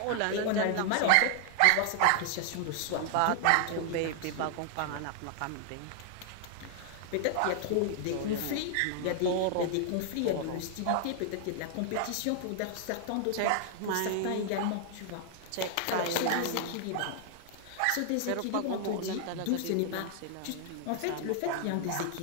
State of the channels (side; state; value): both; different; correlation 0.00